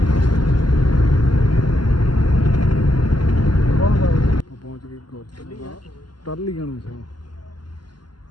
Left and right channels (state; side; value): late; right; 0.71 ms